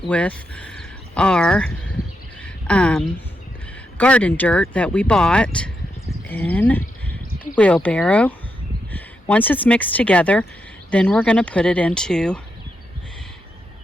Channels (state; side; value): normal; both; correlation 0.83